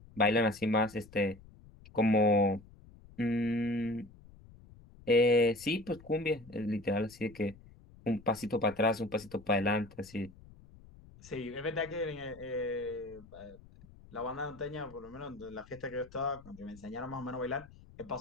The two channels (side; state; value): left; noise; rumble, 22 dB below the sound